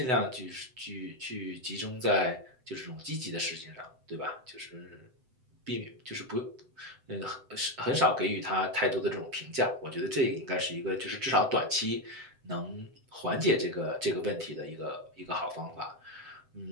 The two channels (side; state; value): left; late; 7.8 ms